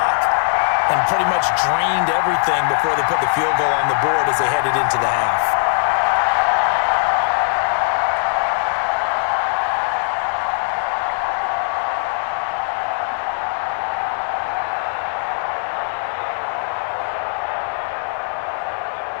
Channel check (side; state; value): right; silent; digital silence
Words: and pretty much drained everything before they put the field goal on the board as they headed into the half.